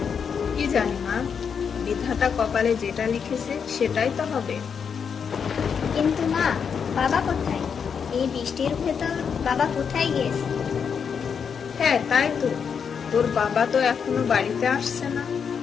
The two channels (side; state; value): right; quieter; 6.7 dB